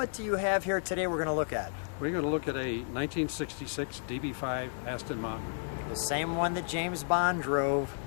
do you have here today we're going to look at? We're going to look at a 1966 DB5 Aston Martin. The same one that James Bond drove.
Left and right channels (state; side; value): silent; right; 56 dB below the other